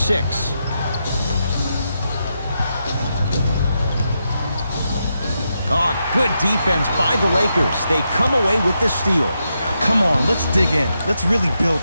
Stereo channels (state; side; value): inverted; both; correlation -0.84